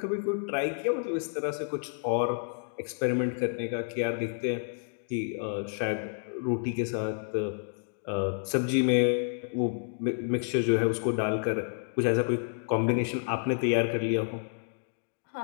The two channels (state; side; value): silent; right; 58 dB below the other